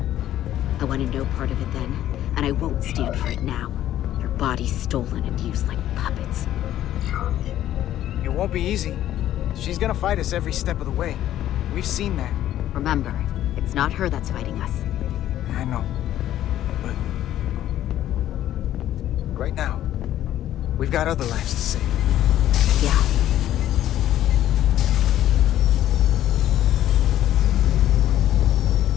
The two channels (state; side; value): quieter; right; 12.4 dB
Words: I wanted no part of it then, and I won't stand for it now. Their bodies stolen and used like puppets. It won't be easy. She's gonna fight us every step of the way. We've seen that. Remember, it's not her that's fighting us. I know. But right now, we've got other lives to save. Yeah.